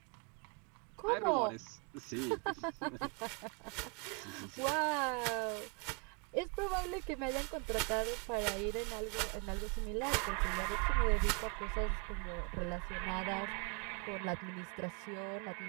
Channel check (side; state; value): left; quieter; 34.5 dB